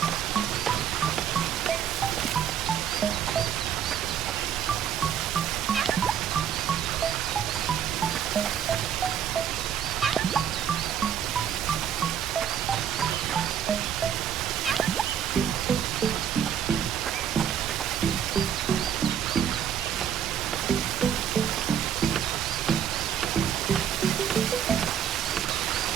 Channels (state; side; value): quieter; left; 8.8 dB